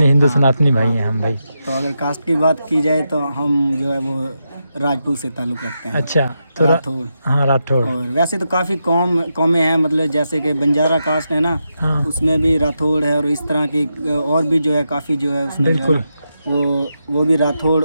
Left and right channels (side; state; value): both; inverted; correlation -0.86